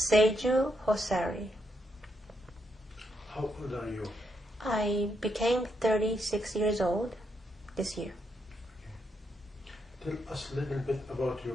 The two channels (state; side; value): normal; both; correlation 0.79